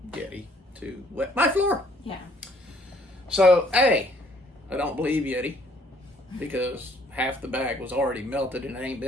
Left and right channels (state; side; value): normal; both; correlation 0.62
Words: Yeti to wet my floor. Yeah. So, I don't believe Yeti, because half the bag was already melted and it ain't